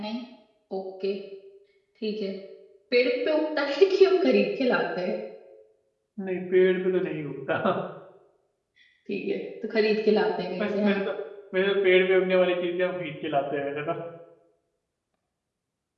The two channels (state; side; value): identical; both; correlation 1.00